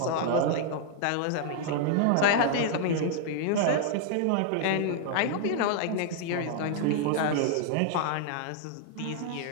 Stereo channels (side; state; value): both; different; correlation 0.00